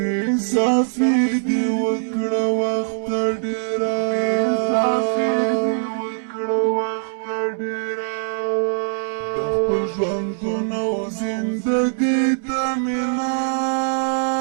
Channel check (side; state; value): left; silent; 64 dB below the other